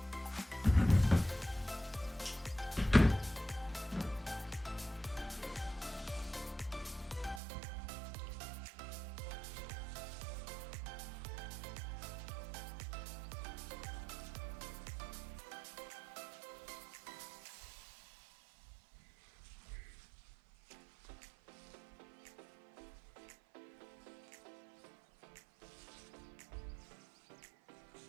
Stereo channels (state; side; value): drops out; left; at 7.4 s